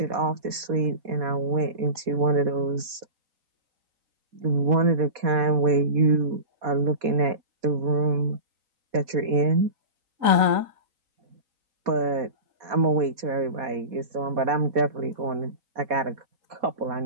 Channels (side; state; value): left; late; 4.2 ms